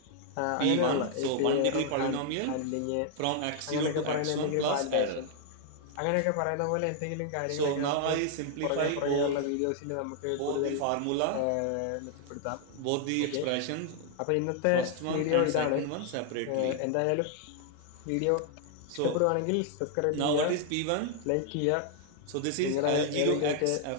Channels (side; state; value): both; different; correlation 0.00